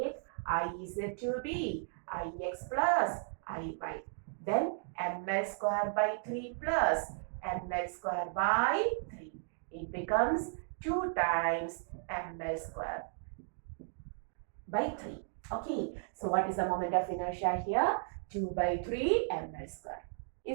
I is to be Ix plus Iy. Then ml square by 3 plus ml square by 3. It becomes 2 times ml square by 3. Okay, so what is the moment of inertia here? 2 by 3 ml square.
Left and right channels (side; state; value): left; silent; digital silence